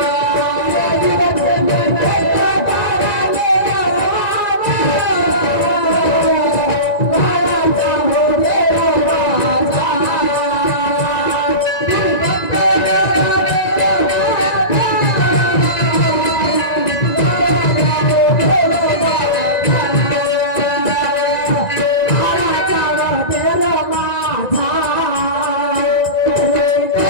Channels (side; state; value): right; late; 1.9 ms